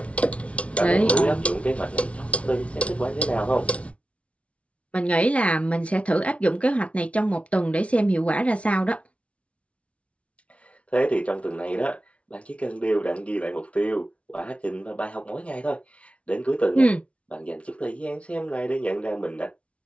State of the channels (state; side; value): late; right; 0.062 ms